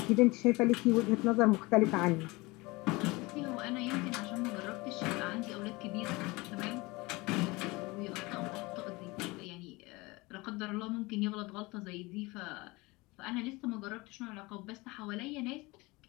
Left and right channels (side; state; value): right; quieter; 23.4 dB